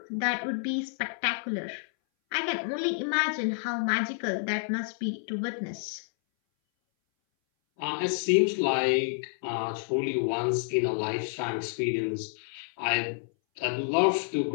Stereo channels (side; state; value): right; silent; 58 dB below the other